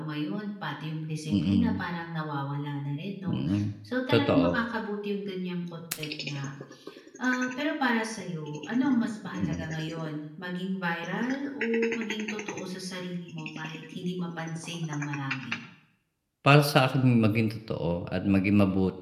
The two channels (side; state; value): both; identical; correlation 1.00